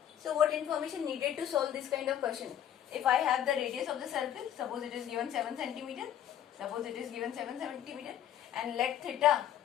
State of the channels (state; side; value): quieter; right; 10.5 dB